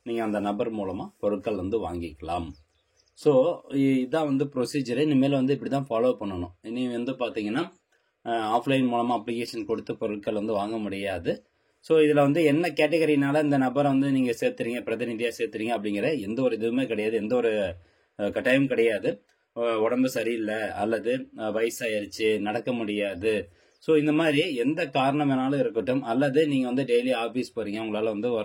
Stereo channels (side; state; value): both; identical; correlation 1.00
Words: நீங்கள் அந்த நபர் மூலமாக பொருட்கள் வந்து வாங்கிக்கலாம். ஸோ இதான் வந்து ப்ரொசீஜரு. இனிமேல் வந்து இப்படி தான் ஃபாலோ பண்ணணும். இனி வந்து பார்த்தீங்கன்னா ஆஃப்லைன் மூலமாக அப்ளிகேஷன் கொடுத்து பொருட்கள் வந்து வாங்க முடியாது. ஸோ இதில் வந்து என்ன கேட்டகரினால இந்த நபரை வந்து நீங்கள் சேர்த்துறீங்க, பிரதிநிதியாக சேர்த்துறீங்க அப்படிங்கிற எந்த ஒரு இதுவுமே கிடையாது, எந்த ஒரு கட்டாயம் கிடையாது. உடம்பு சரியில்லை அல்லது வயசாயிருச்சு, நடக்க முடியாது, ஸோ இந்த மாதிரி எந்த காரணம் வேணாலும் இருக்கட்டும், அல்லது நீங்கள் வந்து டெய்லி ஆஃபீஸ் போகிறீங்க, உங்களால் வந்து